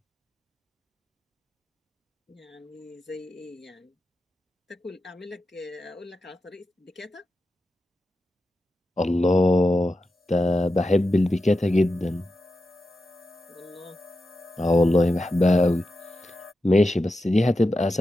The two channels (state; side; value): normal; both; correlation 0.90